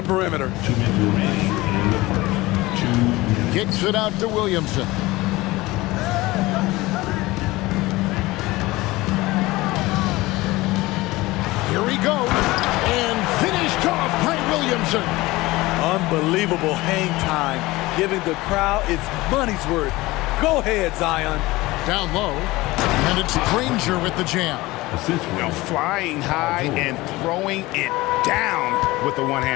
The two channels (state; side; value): quieter; right; 19.9 dB